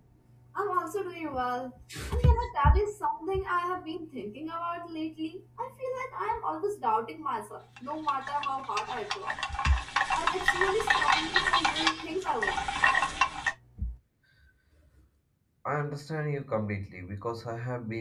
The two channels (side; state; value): both; identical; correlation 1.00